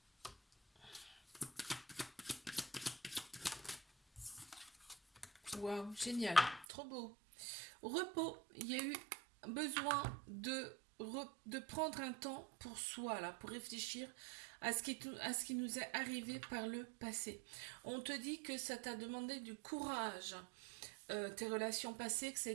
Waouh, génial, trop beau. Repos, il y a eu besoin de prendre un temps pour soi, là, pour réfléchir à ce qui nous est arrivé par le passé. On te dit que ça t'a demandé du courage, tes relations passées, que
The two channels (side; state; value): left; drops out; at 6.7 s